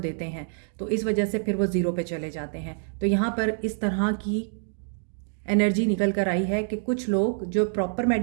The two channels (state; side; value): silent; left; 61 dB below the other